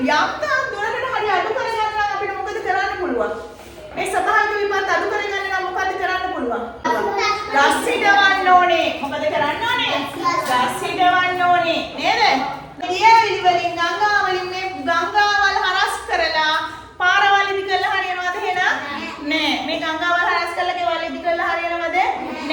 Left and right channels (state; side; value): identical; both; correlation 1.00